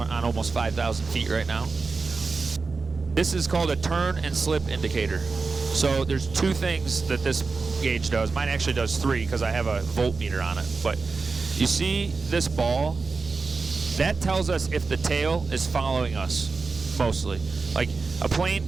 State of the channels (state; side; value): quieter; left; 4.3 dB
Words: almost 5,000 feet right now. This is called a turn and slip indicator. So there's two things that this gauge does. Mine actually does three because I have a voltmeter on it. But you see this ball? That tells us if the tail is following us, mostly. Like a plane